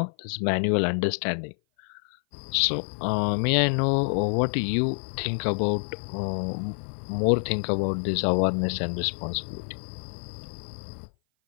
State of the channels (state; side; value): silent; right; 57 dB below the other